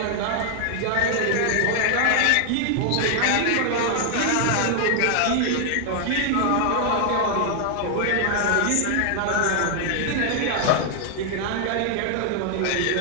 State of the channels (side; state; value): both; different; correlation 0.00